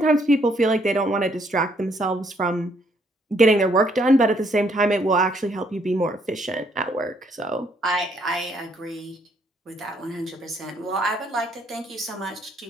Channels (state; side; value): normal; both; correlation 0.69